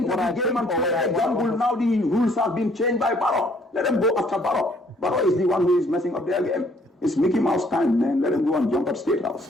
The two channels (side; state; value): both; normal; correlation 0.63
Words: Now the rules have been changed by Barrow. Let them go after Barrow. Barrow is the one who is messing up their game. It's Mickey Mouse time, man. Let them go and jump at State House.